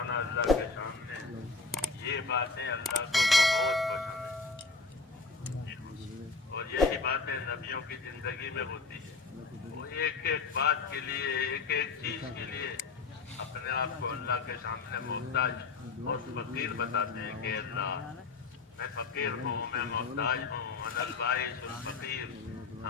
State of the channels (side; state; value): right; quieter; 4.3 dB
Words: اللہ کے سامنے، یہ باتیں اللہ کو بہت پسند ہیں، اور یہی باتیں نبیوں کی زندگی میں ہوتی ہیں. وہ ایک ایک بات کے لیے، ایک ایک چیز کے لیے اپنے آپ کو اللہ کے سامنے محتاج اور فقیر بتاتے ہیں کہ اللہ میں فقیر ہوں، میں محتاج ہوں، انا البائس الفقیر،